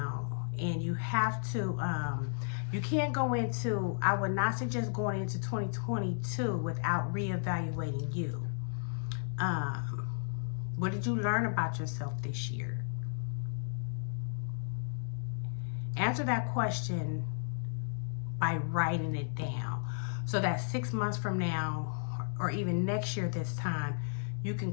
And you have to, you can't go into, I would not suggest going into 2022 without reevaluating you. What did you learn about yourself this year? Answer that question by writing it down, so that 6 months from now, or even next year this time, you can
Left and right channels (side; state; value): right; silent; digital silence